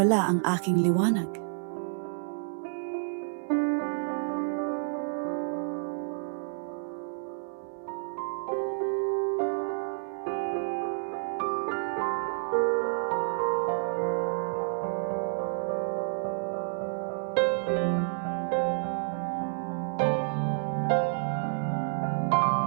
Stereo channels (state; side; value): silent; left; 58 dB below the other